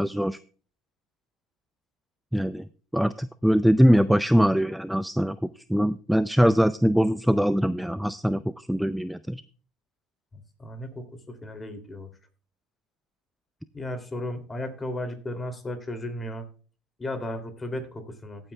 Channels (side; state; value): both; normal; correlation 0.98